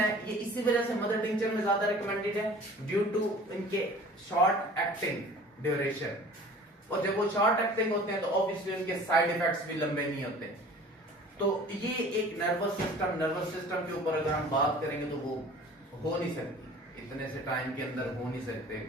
ये इसी वजह से मदर टिंचर में ज्यादा रिकमेंडेड है, ड्यू टू इनके शॉर्ट एक्टिंग ड्यूरेशन। और जब वो शॉर्ट एक्टिंग होते हैं तो ऑब्वियसली उनके साइड इफेक्ट्स भी लंबे नहीं होते। तो ये एक नर्वस सिस्टम के ऊपर अगर हम बात करेंगे तो वो हो नहीं सकती, इतने से टाइम के अंदर हो नहीं सकते।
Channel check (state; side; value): normal; both; correlation 0.46